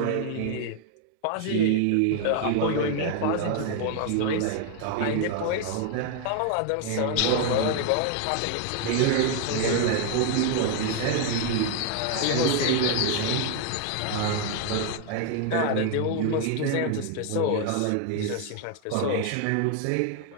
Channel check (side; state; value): both; different; correlation 0.00